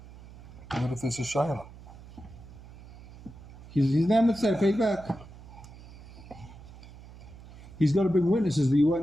what if there's a Shaila? He's never said pay back. He's got to bring witnesses that you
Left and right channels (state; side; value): noise; right; hum, 18 dB below the sound